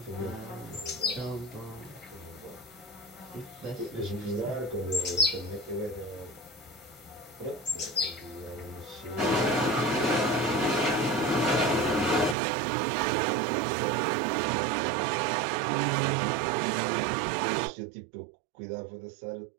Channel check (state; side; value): drops out; left; at 12.4 s